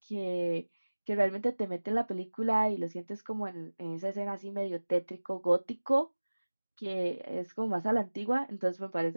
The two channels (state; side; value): inverted; both; correlation -1.00